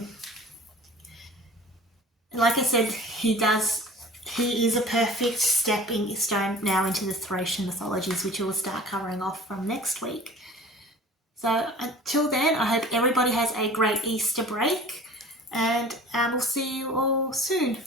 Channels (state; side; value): normal; both; correlation 0.43